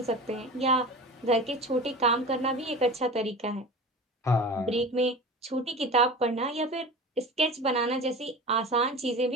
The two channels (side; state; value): both; normal; correlation 0.34